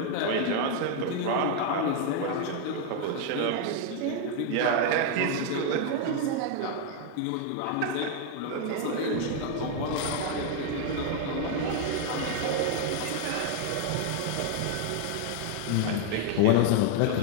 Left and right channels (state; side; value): different; both; correlation 0.00